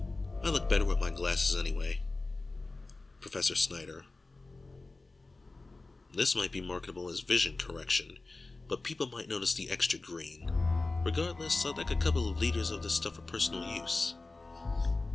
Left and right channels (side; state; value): right; quieter; 3.3 dB